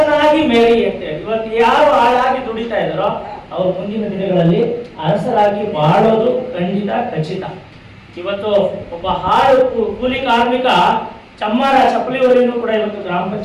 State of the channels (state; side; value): identical; both; correlation 1.00